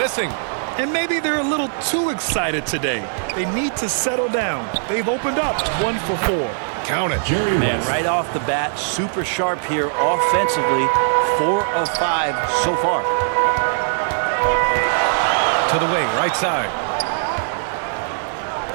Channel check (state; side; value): silent; left; digital silence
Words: And maybe they're a little too excited today. They need to settle down. They've opened up 1 for 4. Count it. Man, right off the bat, super sharp here offensively. 4 of 5 so far. To the wing, right side.